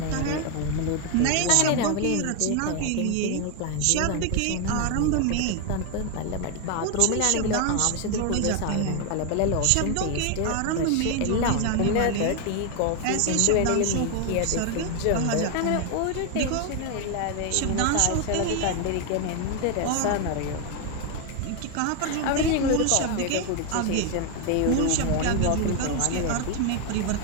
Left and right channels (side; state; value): both; different; correlation 0.01